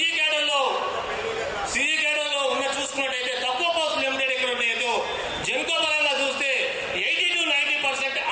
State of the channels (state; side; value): identical; both; correlation 1.00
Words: క్యాడర్లో ఉన్న చూసుకున్నట్టయితే తక్కువ పోస్టులు లిమిటెడ్ ఎక్కడ ఉన్నాయో జెన్కో పరంగా చూస్తే 80 to 90%